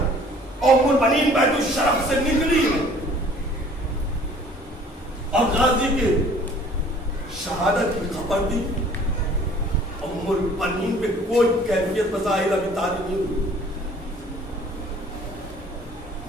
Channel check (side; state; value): both; normal; correlation 0.53